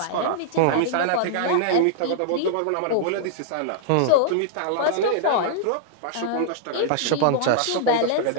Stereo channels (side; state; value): both; different; correlation -0.01